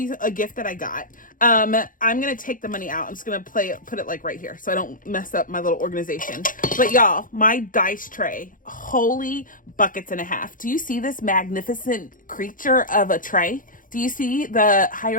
a gift that I got. I'm going to take the money out. I'm just going to put it like right here so I don't mess up my little organization. But y'all, my dice tray, holy buckets and a half. Do you see this magnificent creature of a tray? Do you see the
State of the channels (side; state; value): right; late; 0.39 ms